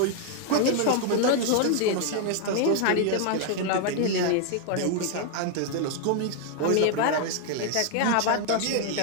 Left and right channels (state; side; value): different; both; correlation 0.00